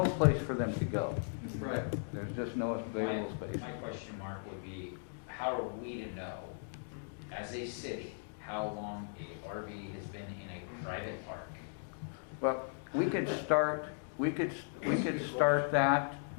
place for them to go. Right. There's just no available space. My question mark would be, how are we to know, as a city, how long a RV has been in a private park? Well, we could start that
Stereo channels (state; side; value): silent; right; digital silence